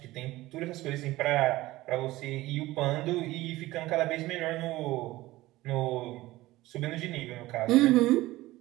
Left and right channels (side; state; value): left; quieter; 17.7 dB